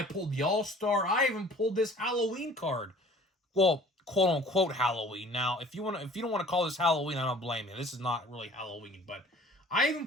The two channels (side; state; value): both; normal; correlation 0.50